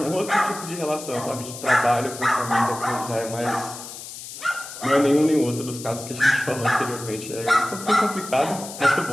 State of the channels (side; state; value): left; noise; hiss, 12 dB below the sound